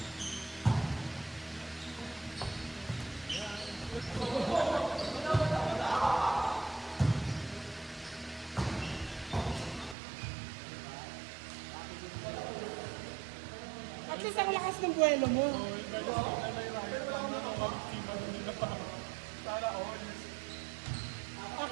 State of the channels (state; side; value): drops out; left; at 10.0 s